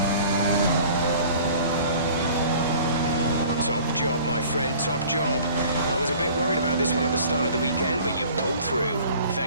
Top job, my friend, top job. I was a bit worried about this one at the start of the weekend, but you've pulled through.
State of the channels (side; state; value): both; inverted; correlation -0.48